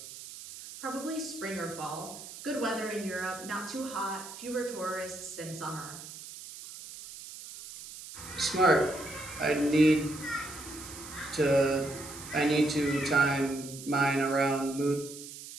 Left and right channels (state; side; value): noise; right; hiss, 13 dB below the sound